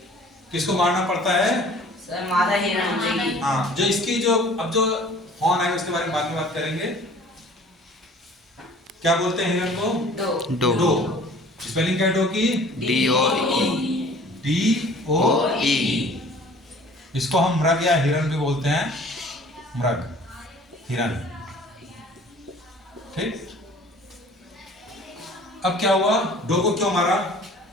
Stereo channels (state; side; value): normal; both; correlation 0.49